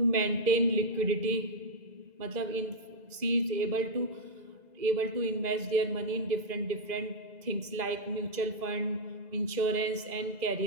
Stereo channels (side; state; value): left; late; 2.0 ms